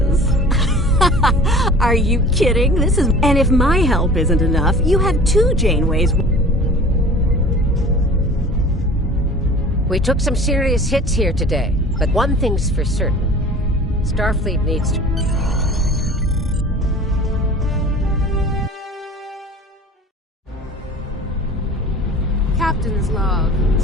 Are you kidding? And if my help isn't enough, you have 2 Janeways. We took some serious hits here today, but one thing's for certain. Starfleet needs to... Captain's log,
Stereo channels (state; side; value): normal; both; correlation 0.43